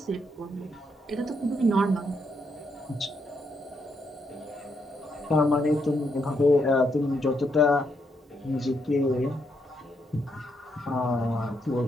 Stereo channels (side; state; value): both; normal; correlation 0.78